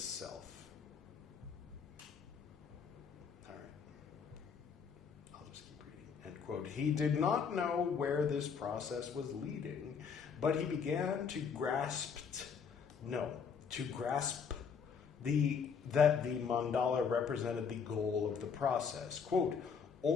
self." All right. I'll just keep reading. End quote. He did not know where this process was leading, but he began to grasp that the mandala represented the goal of the process. Quote,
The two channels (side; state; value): right; quieter; 6.4 dB